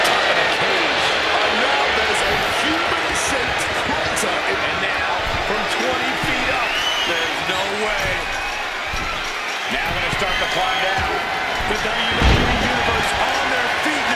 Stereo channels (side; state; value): both; identical; correlation 1.00